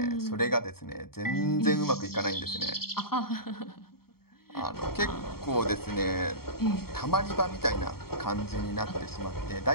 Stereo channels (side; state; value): right; late; 0.94 ms